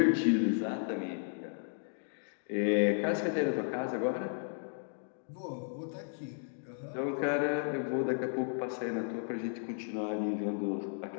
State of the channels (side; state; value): right; silent; digital silence